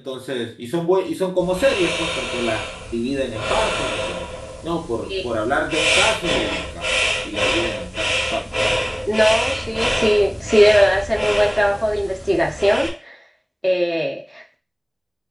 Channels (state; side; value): identical; both; correlation 1.00